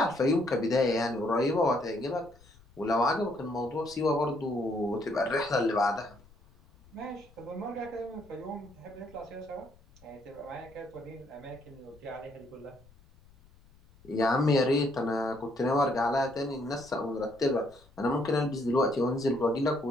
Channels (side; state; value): left; noise; rumble, 26 dB below the sound